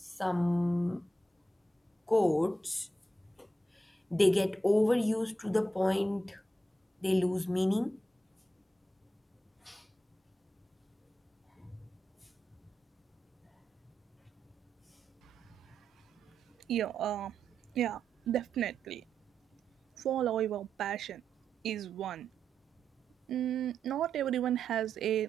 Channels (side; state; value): both; normal; correlation 0.86